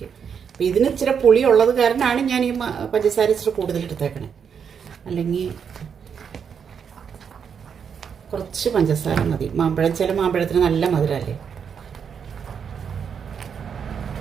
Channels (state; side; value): quieter; left; 7.1 dB